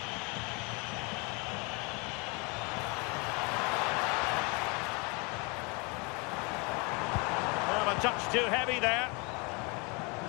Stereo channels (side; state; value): right; quieter; 30.4 dB